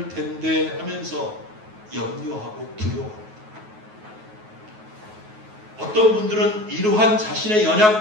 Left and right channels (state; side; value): late; left; 9.3 ms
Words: 텐데 하면서 염려하고 두려워합니다. 어떤 분들은 이러한 자신의